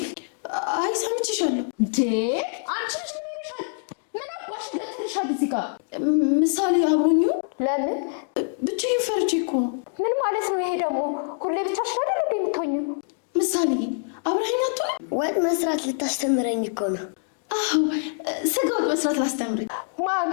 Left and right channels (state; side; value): silent; right; digital silence